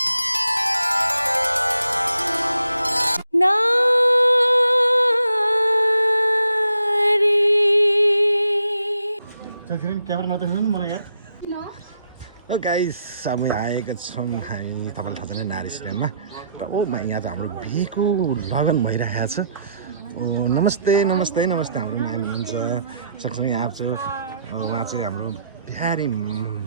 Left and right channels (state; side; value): inverted; both; correlation -0.74